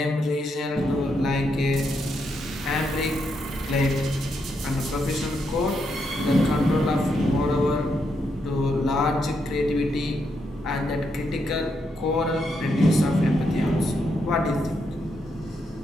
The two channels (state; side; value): normal; both; correlation 0.80